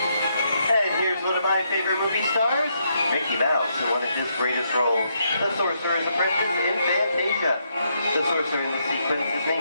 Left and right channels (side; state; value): both; inverted; correlation -0.77